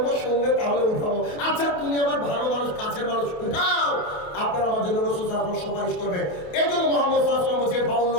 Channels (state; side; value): late; right; 28 ms